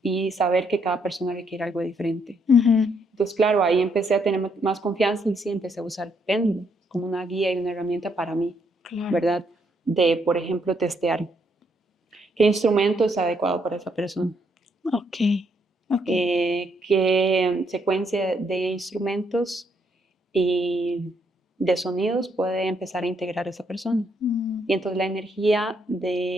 y saber que cada persona requiere algo diferente. Entonces, claro, ahí empecé a tener más confianza y sí empecé a usar péndulo como una guía y una herramienta para mí, ¿verdad? De, por ejemplo, testear qué instrumento es adecuado para esa persona. Qué secuencia de instrumentos y de sonidos puede empezar a integrar esa persona. Y entonces la energía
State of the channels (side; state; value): both; normal; correlation 0.73